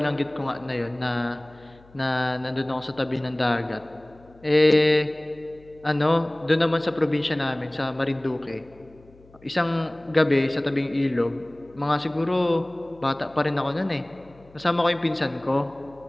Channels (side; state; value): left; noise; hum, 26 dB below the sound